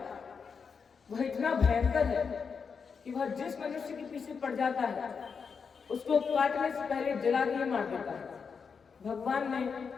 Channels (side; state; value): right; quieter; 5.8 dB